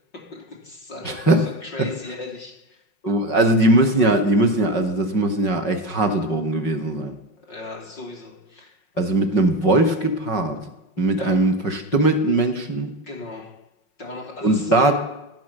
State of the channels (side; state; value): right; late; 5.5 ms